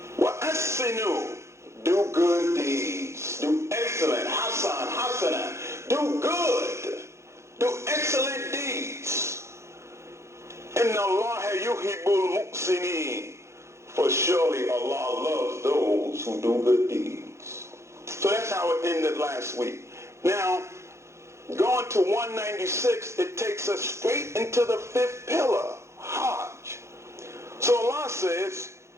وَأَحْسِنُوا. Do good deeds. Do excellent. Hasana. Do good. Do excellent deeds. إِنَّ اللَّهَ يُحِبُّ الْمُحْسِنِينَ. For surely Allah loves those who do good deeds. So that's how it ended last week. Now, going to 196, it takes us straight into the fifth pillar, Hajj. So Allah says,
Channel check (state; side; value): late; left; 0.13 ms